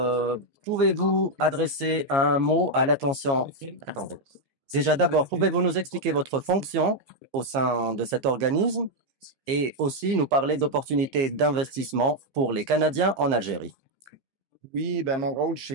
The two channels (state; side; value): late; left; 15 ms